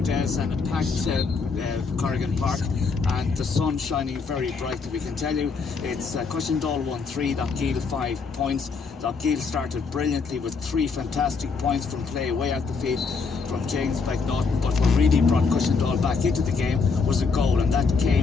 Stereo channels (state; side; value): quieter; right; 4.8 dB